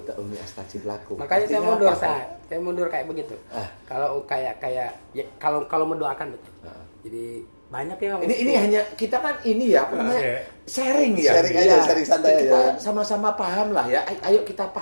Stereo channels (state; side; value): inverted; both; correlation -1.00